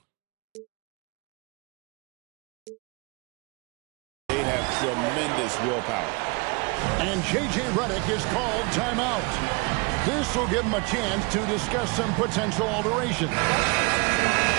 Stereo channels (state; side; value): quieter; left; 28.9 dB